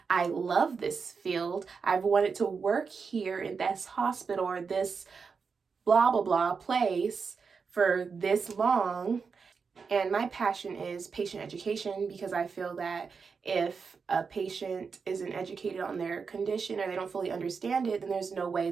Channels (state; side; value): quieter; left; 5.4 dB